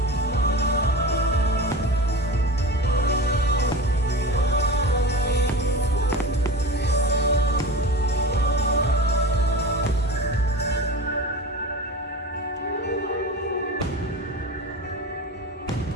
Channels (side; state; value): both; normal; correlation 0.30